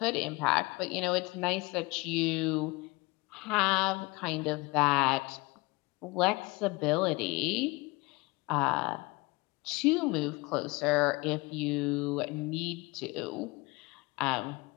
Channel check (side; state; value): right; quieter; 23.9 dB